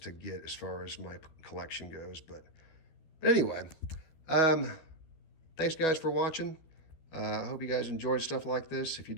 get as far as my collection goes. But anyway, thanks guys for watching. I hope you guys enjoyed stuff like this. If you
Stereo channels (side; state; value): right; late; 12 ms